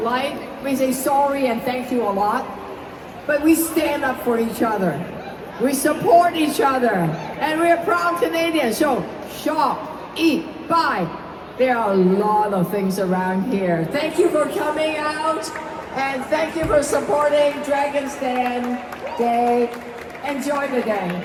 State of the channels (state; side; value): identical; both; correlation 1.00